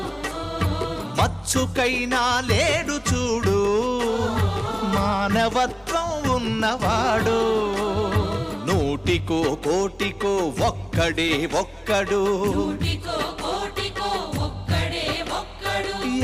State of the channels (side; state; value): both; identical; correlation 1.00